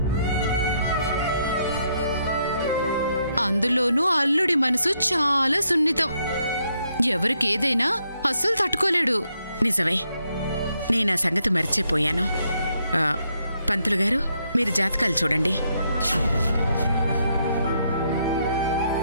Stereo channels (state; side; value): inverted; both; correlation -0.76